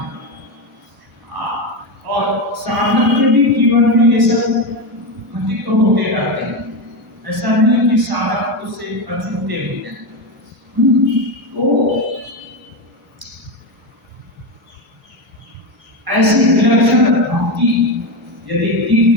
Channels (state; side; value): normal; both; correlation 0.14